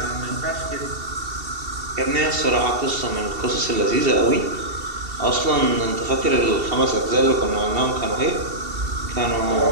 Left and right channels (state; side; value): late; left; 2.7 ms